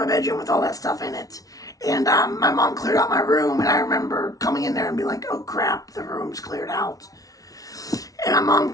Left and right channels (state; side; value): late; right; 0.18 ms